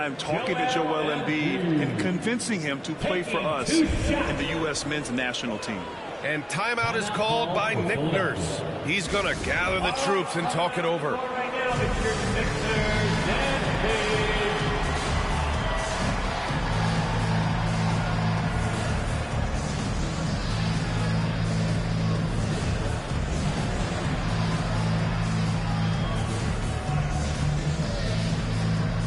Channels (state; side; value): identical; both; correlation 1.00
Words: talking to Joel Embiid and convincing him to play for us in the U.S. men's national team. And timeout is called by Nick Nurse. He's going to gather the troops and talk it over. Right now, it's your Sixers and Page.